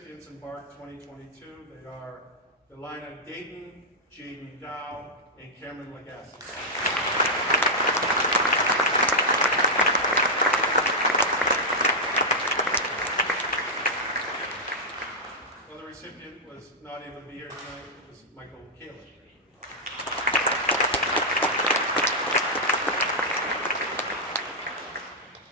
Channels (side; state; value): both; normal; correlation -0.06